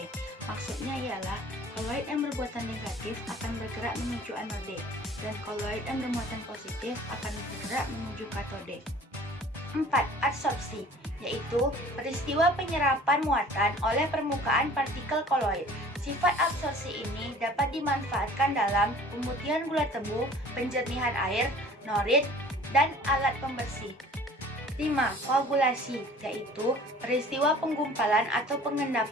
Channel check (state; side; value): normal; both; correlation 0.48